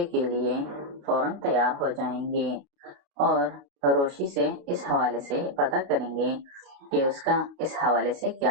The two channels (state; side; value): late; left; 29 ms